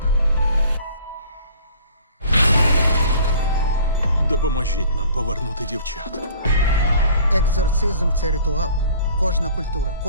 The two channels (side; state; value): both; inverted; correlation -0.49